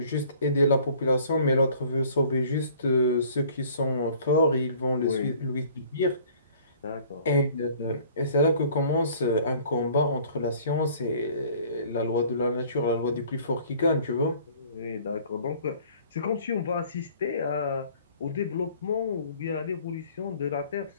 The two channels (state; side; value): inverted; both; correlation -0.53